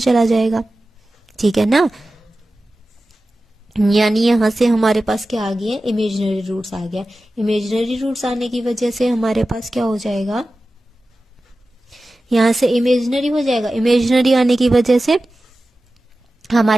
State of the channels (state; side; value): normal; both; correlation 0.95